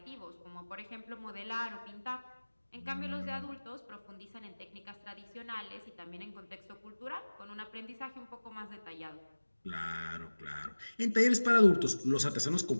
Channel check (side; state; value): both; inverted; correlation -1.00